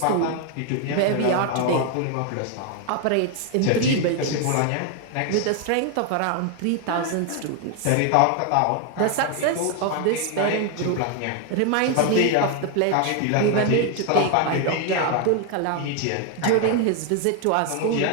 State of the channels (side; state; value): both; different; correlation 0.01